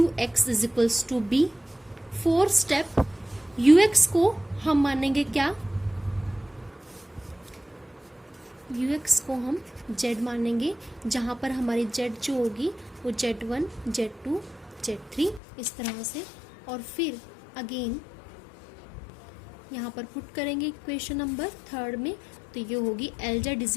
is equals to B. Fourth step ux को हम मानेंगे क्या, ux को हम z मानेंगे, जहां पर हमारी z जो होगी वो z1, z2, z3 इस तरह से, और फिर अगेन यहाँ पर पुट करेंगे इक्वेशन नंबर थर्ड में, तो ये होगी Lz is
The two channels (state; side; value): drops out; right; at 15.4 s